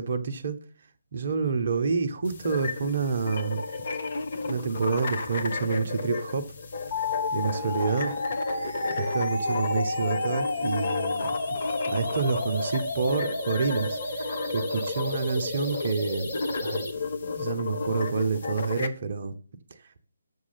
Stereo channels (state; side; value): inverted; both; correlation -0.73